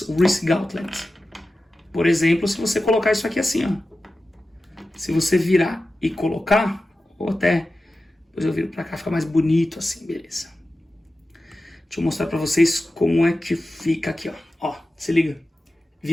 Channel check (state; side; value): normal; both; correlation 0.94